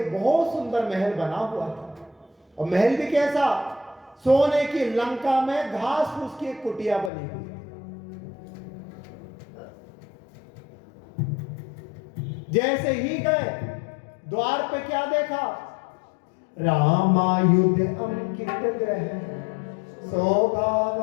बहुत सुंदर महल बना हुआ था। और महल भी कैसा? सोने की लंका में घास फूस की एक कुटिया बनी हुई। जैसे ही गए, द्वार पे क्या देखा? रामायुध अंकित ग्रह, शोभा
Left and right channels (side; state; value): right; drops out; at 7.1 s